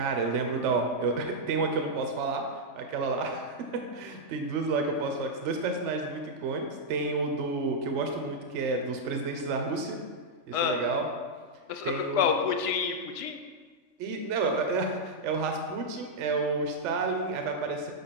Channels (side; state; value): left; late; 3.4 ms